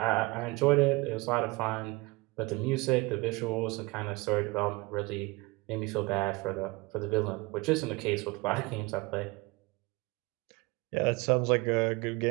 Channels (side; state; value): left; quieter; 24.4 dB